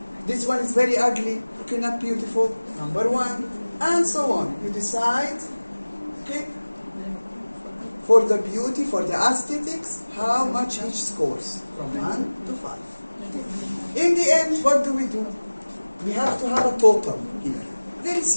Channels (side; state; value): both; inverted; correlation -1.00